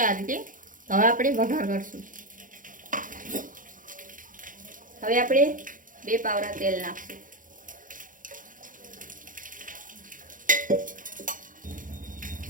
આ રીતે હવે આપણે વઘાર કરશું। હવે આપણે 2 પાવડા તેલ નાખશું।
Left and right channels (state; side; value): late; left; 0.39 ms